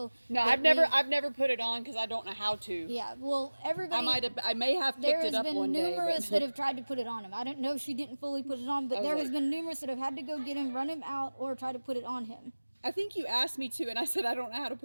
No, But I've never put it on because I don't know how to. Yeah, well, everybody. I may have There picked has it up been one day. numerous But that have tried to put it on him. I don't know if she didn't fully put it on, but was there has like- been numerous that have had to go get him, run him out, or try to put it on him. I think you asked me to, and I said I don't know how to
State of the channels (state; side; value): inverted; both; correlation -1.00